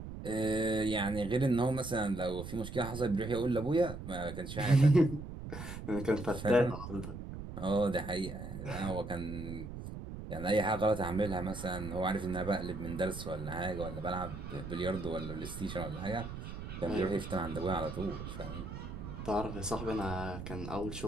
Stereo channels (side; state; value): right; noise; rumble, 9 dB below the sound